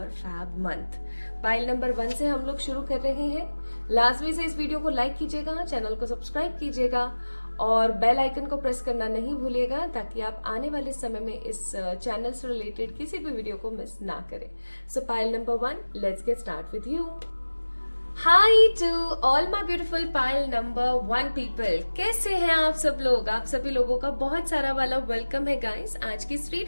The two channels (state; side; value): inverted; both; correlation -1.00